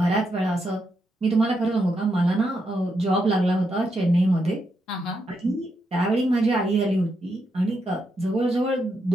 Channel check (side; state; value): both; normal; correlation 0.81